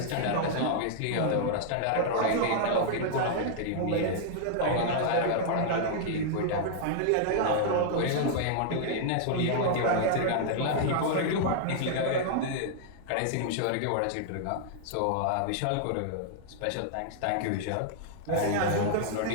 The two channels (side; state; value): both; different; correlation -0.01